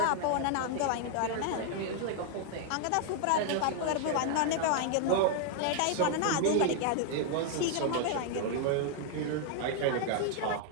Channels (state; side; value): different; both; correlation 0.00